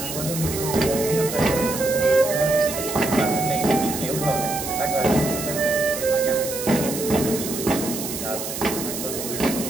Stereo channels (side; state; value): right; noise; hiss, 6 dB below the sound